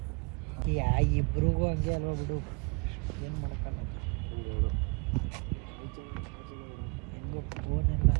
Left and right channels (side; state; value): left; quieter; 31.8 dB